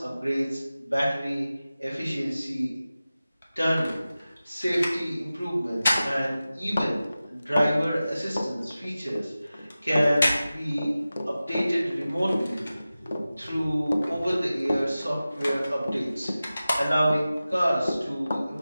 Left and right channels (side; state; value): both; inverted; correlation -0.95